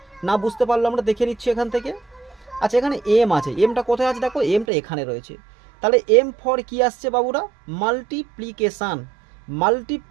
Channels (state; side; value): drops out; left; at 4.7 s